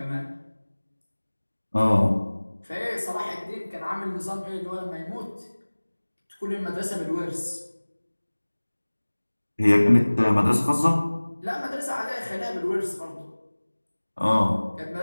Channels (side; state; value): both; inverted; correlation -1.00